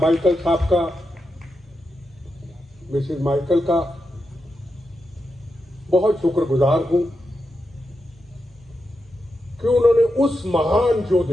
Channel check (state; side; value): normal; both; correlation 0.87